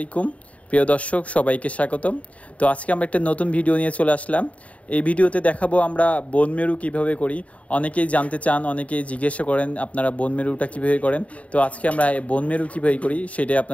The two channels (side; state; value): right; late; 0.066 ms